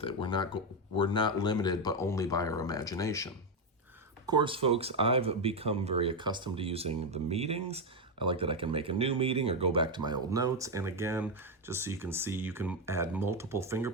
it. We're not limited, but only by our imagination. Of course, folks, I've become very accustomed to using the meetings. I like that I can make a new meeting or go back to my old notes. And again, just so you can see, you can add multiple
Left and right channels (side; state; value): both; normal; correlation 0.06